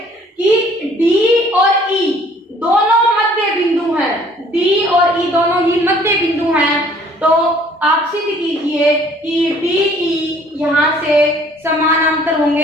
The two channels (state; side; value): normal; both; correlation 0.57